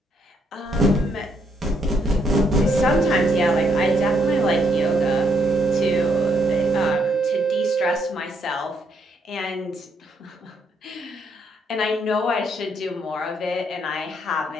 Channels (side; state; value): both; normal; correlation 0.73